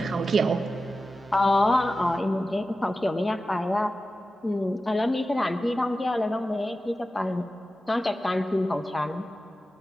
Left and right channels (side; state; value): both; normal; correlation 0.93